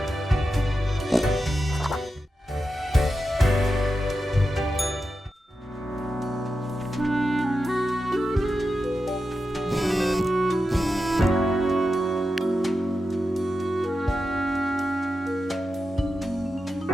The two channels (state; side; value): normal; both; correlation 0.90